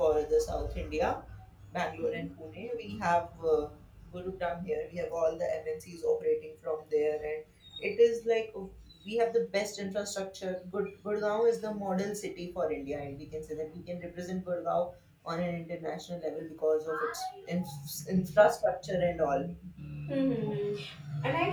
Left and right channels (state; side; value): identical; both; correlation 1.00